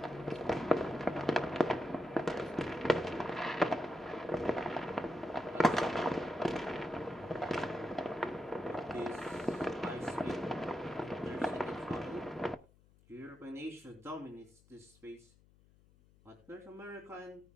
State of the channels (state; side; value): noise; left; hum, 28 dB below the sound